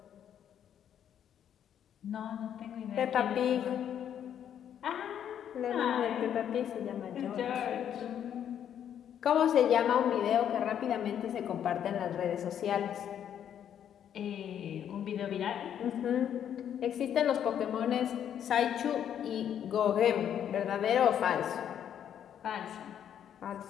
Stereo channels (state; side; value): quieter; right; 9.4 dB